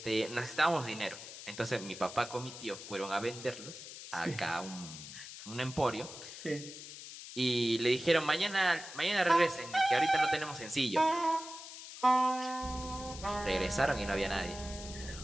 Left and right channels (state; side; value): noise; left; hiss, 12 dB below the sound